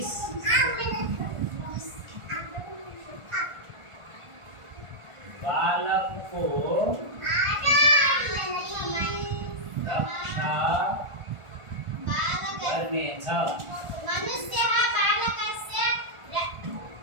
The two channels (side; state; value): left; late; 1.4 ms